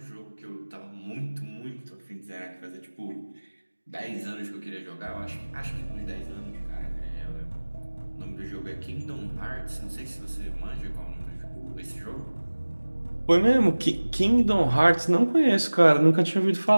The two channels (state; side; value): inverted; both; correlation -1.00